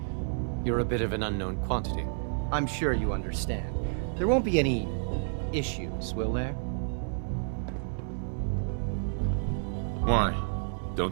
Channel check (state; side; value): silent; left; digital silence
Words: you're a bit of an unknown quantity. I'm sure you understand. There won't be any issues, will there? Why?